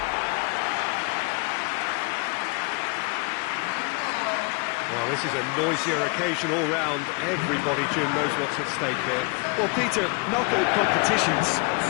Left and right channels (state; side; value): quieter; right; 31.0 dB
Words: Well, this is a noisier occasion all round. Everybody, Jim, knows what's at stake here. Well, Peter, knockout competitions